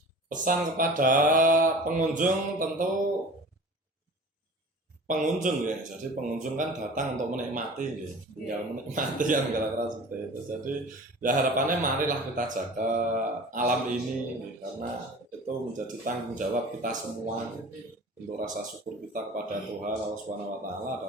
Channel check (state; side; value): normal; both; correlation 0.40